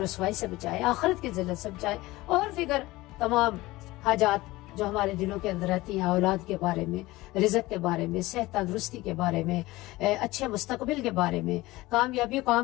رسوائی سے بچائے، آخرت کی ذلت سے بچائے، اور دیگر تمام حاجات جو ہمارے دلوں کے اندر رہتی ہیں، اولاد کے بارے میں، رزق کے بارے میں، صحت تندرستی کے بارے میں، اچھے مستقبل کے بارے میں، کامیابی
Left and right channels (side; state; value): right; quieter; 19.3 dB